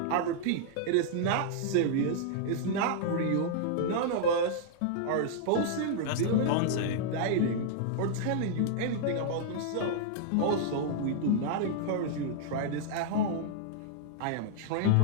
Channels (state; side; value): different; both; correlation -0.01